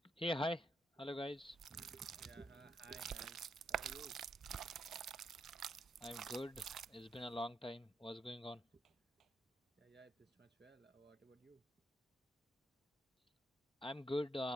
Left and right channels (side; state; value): both; normal; correlation 0.77